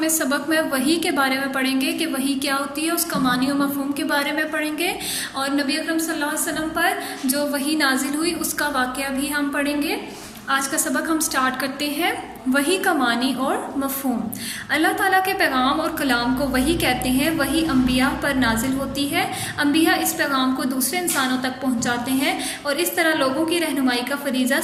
اس سبق میں وحی کے بارے میں پڑھیں گے کہ وحی کیا ہوتی ہے، اس کا معنی و مفہوم کے بارے میں پڑھیں گے، اور نبی اکرم صلی اللہ علیہ وسلم پر جو وحی نازل ہوئی اس کا واقعہ بھی ہم پڑھیں گے۔ آج کا سبق ہم سٹارٹ کرتے ہیں۔ وحی کا معنی اور مفہوم۔ اللہ تعالیٰ کے پیغام اور کلام کو وحی کہتے ہیں۔ وحی انبیاء پر نازل ہوتی ہے۔ انبیاء اس پیغام کو دوسرے انسانوں تک پہنچاتے ہیں اور اس طرح لوگوں کی رہنمائی کا فریضہ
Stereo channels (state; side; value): identical; both; correlation 1.00